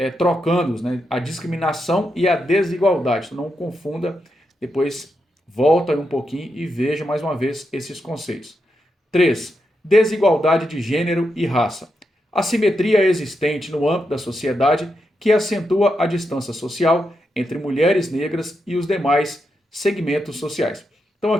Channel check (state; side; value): normal; both; correlation 0.85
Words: trocando, né, a discriminação e a desigualdade. Então, não confunda, depois volta um pouquinho e veja mais uma vez esses conceitos. 3. Desigualdade de gênero e raça. Assimetria existente no âmbito da sociedade que acentua a distância social entre mulheres negras e os demais segmentos sociais. Então